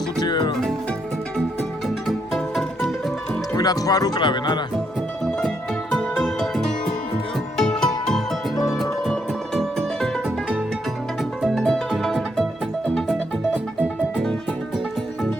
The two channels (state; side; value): normal; both; correlation 0.76